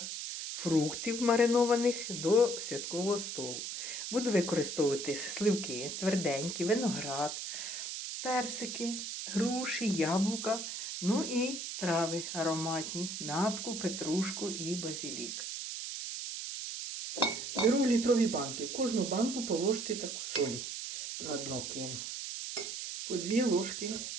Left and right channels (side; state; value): right; noise; hiss, 5 dB below the sound